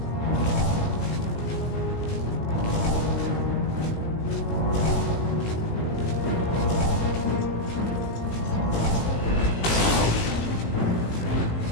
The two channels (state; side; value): late; right; 18 ms